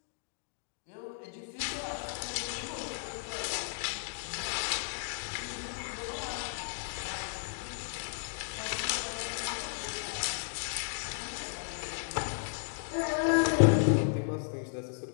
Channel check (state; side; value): silent; right; digital silence